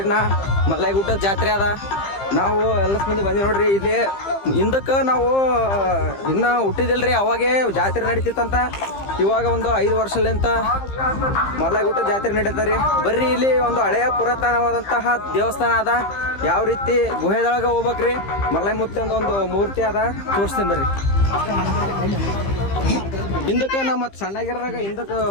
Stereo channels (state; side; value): late; right; 15 ms